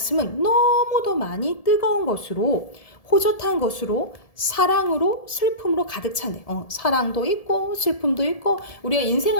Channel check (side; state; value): right; late; 1.7 ms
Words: 너무도 많이 뜨거운 것으로, 호젓한 것으로, 사랑으로, 슬픔으로 가득 차네. 사랑도 있고 슬픔도 있고, 우리가